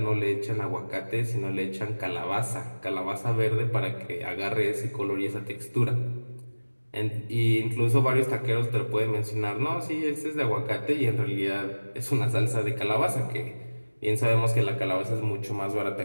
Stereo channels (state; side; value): inverted; both; correlation -1.00